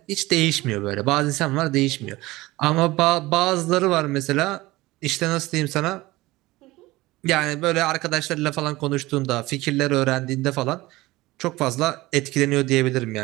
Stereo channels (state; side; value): quieter; left; 19.5 dB